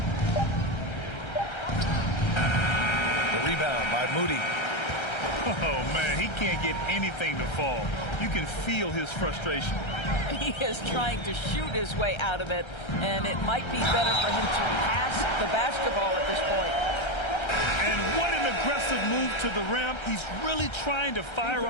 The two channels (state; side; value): late; right; 1.3 ms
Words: The rebound by Moody. Oh, man, he can't get anything to fall. You can feel his frustration. He is trying to shoot his way out of it, and it might be better for him to pass the basketball at this point. And what an aggressive move to the rim. He's really trying to fire